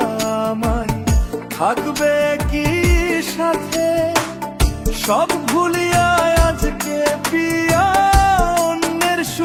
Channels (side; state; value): both; identical; correlation 1.00